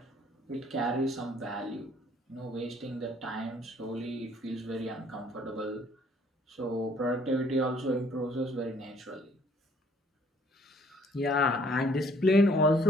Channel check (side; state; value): both; normal; correlation 0.61